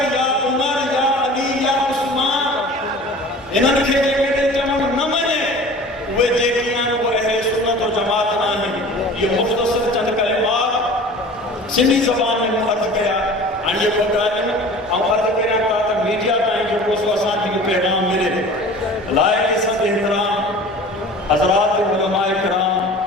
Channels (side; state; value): both; normal; correlation 0.42